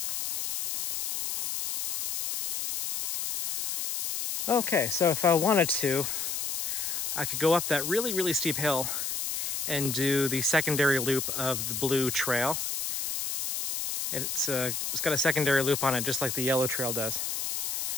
Okay, so if I wanted to, I could go up that really, really steep hill and do the secondary loop of the blue trail. It's got a secondary loop on it, just like the yellow trail does.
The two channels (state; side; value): noise; left; hiss, 2 dB below the sound